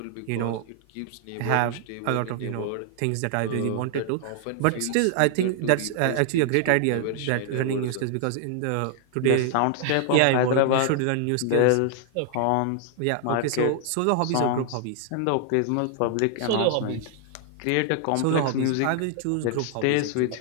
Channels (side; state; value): both; different; correlation 0.00